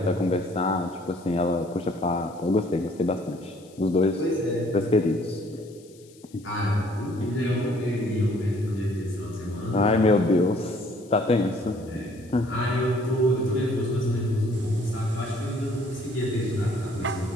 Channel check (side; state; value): left; noise; hiss, 27 dB below the sound